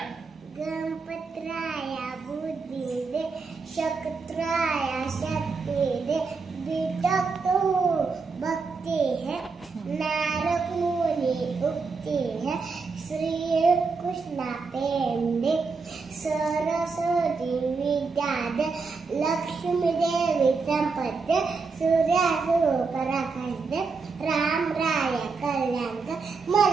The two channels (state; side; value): quieter; left; 4.6 dB